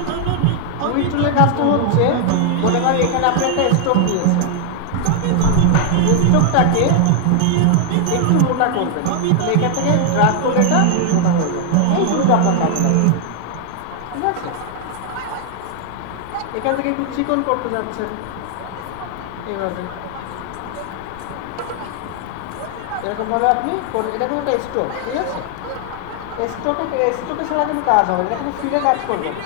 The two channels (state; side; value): different; both; correlation 0.00